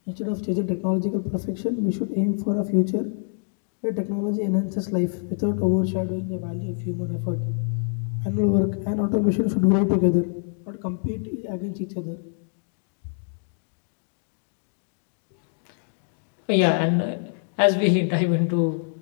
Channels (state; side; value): silent; right; 59 dB below the other